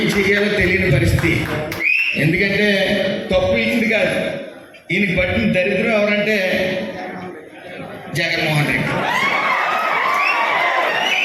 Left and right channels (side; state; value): both; identical; correlation 1.00